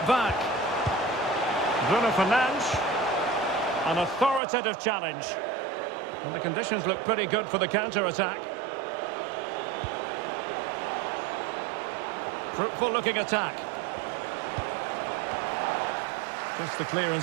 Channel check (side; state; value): left; drops out; at 4.4 s